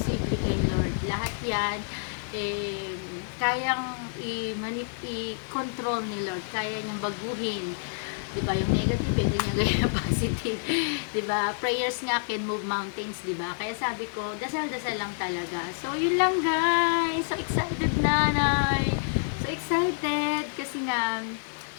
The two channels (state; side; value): silent; right; 59 dB below the other